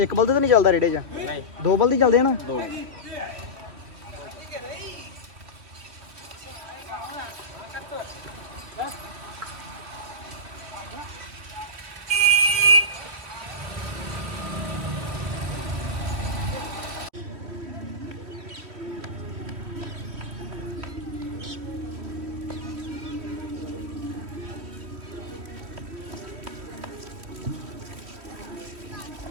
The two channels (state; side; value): late; left; 3.1 ms